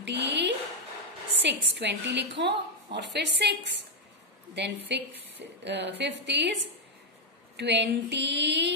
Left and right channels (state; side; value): normal; both; correlation 0.01